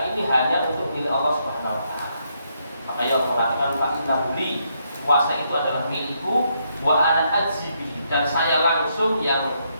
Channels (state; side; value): inverted; both; correlation -0.76